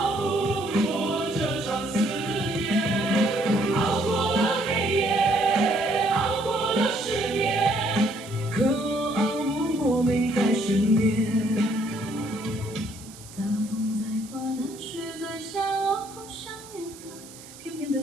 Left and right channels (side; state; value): right; noise; hiss, 19 dB below the sound